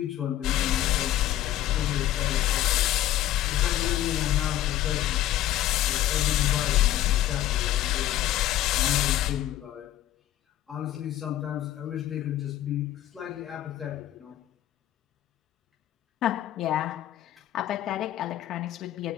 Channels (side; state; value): right; quieter; 13.5 dB